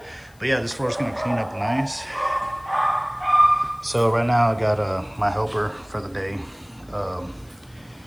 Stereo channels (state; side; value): noise; left; hiss, 30 dB below the sound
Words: But yeah, this floor is gonna clean up nice. So right now I got my helper for the day